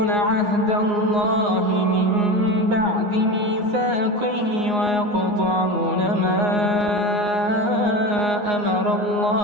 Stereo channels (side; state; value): left; late; 9.6 ms